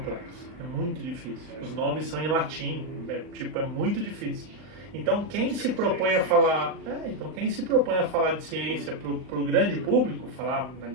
é muito difícil. Os nomes são em latim, é muito difícil. Então quem se propõe a falar, de ciência para o grande público, falar na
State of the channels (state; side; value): late; left; 39 ms